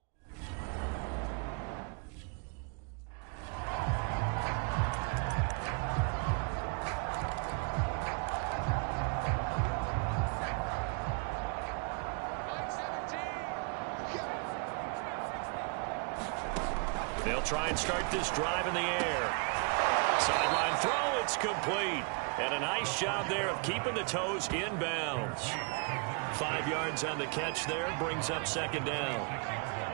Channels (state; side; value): quieter; left; 36.4 dB